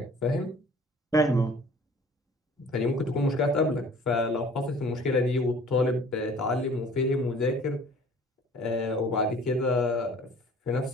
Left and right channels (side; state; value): both; normal; correlation 0.50